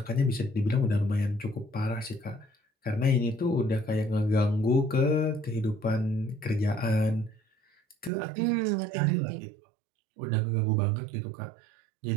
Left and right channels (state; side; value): drops out; left; at 8.1 s